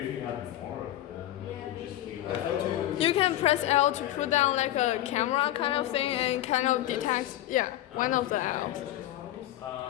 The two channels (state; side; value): quieter; right; 14.2 dB